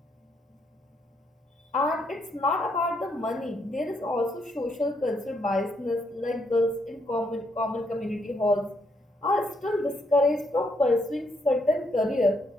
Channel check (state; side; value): normal; both; correlation 0.75